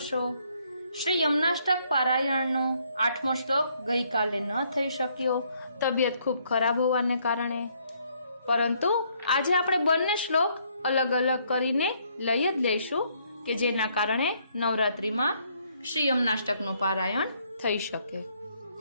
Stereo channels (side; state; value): both; inverted; correlation -0.69